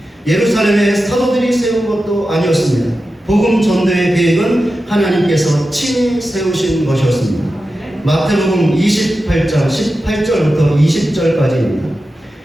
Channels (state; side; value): normal; both; correlation 0.92